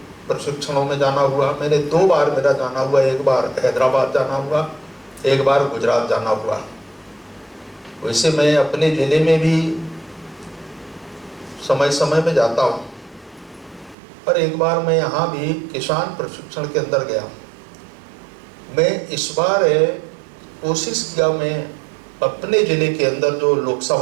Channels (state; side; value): drops out; left; at 14.0 s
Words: प्रशिक्षणों में जाना हुआ। मैंने 2 बार मेरा जाना हुआ, एक बार हैदराबाद जाना हुआ, एक बार गुजरात जाना हुआ। वैसे मैं अपने ज़िले में भी समय समय में जाता हूँ, पर एक बार मैं यहाँ भी किसान प्रशिक्षण के अंदर गया। मैं इस बार कोशिश किया, मैं अपने ज़िले के अंदर जो